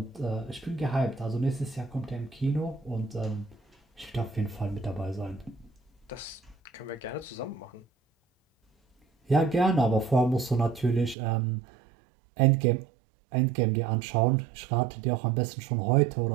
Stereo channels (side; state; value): left; drops out; at 11.2 s